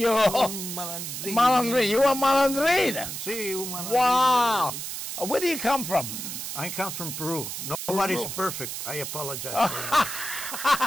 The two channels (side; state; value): right; noise; hiss, 6 dB below the sound